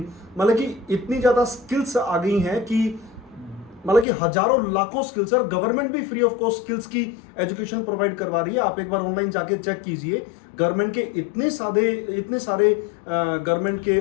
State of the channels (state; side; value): drops out; right; at 4.0 s